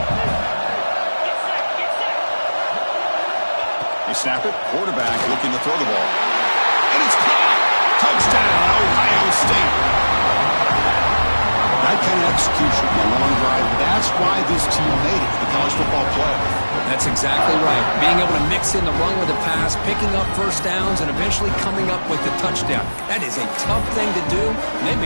They snap it. Quarterback looking to throw the ball. And it's caught. Touchdown, Ohio State. That that kind of execution on a long drive, that's why this team made it to the college football playoff. That's exactly right. Being able to mix in the run with the pass, picking up first downs, and eventually coming up with the touchdown. That is a tough thing to do, and they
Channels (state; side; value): inverted; both; correlation -1.00